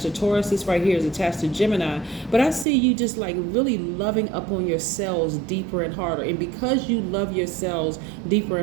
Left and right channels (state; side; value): drops out; left; at 2.7 s